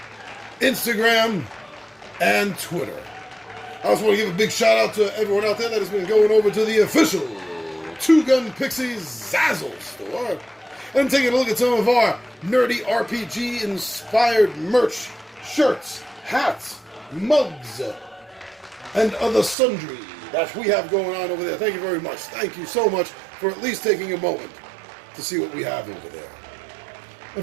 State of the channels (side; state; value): left; drops out; at 19.6 s